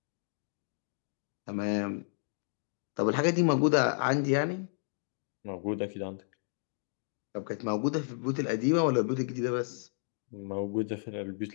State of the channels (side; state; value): right; silent; digital silence